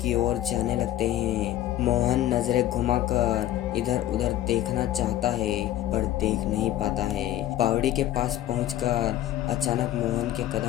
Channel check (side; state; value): right; quieter; 13.3 dB